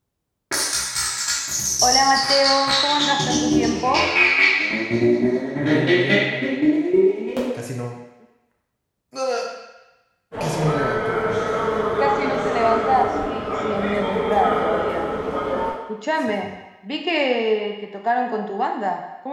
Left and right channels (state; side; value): identical; both; correlation 1.00